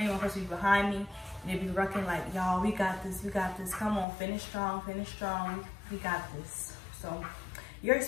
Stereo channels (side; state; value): right; drops out; at 4.0 s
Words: me, one person would be behind me, and they'd be rucking like, y'all, we got this, we got this. Come on, finish strong, we got this. So your